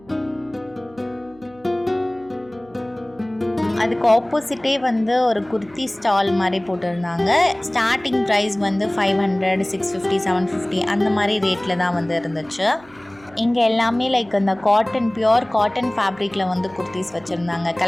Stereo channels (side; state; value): right; noise; hum, 27 dB below the sound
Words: அதுக்கு ஆப்போசிட்டே வந்து ஒரு குர்த்தி ஸ்டால் மாதிரி போட்டிருந்தாங்க. ஸ்டார்டிங் ப்ரைஸ் வந்து 500, 650, 750 அந்த மாதிரி ரேட்டில் தான் வந்து இருந்துச்சு. இங்கே எல்லாமே லைக் அந்த பியோர் காட்டன் ஃபேப்ரிக்கில் வந்து குர்த்திஸ் வச்சுருந்தாங்க.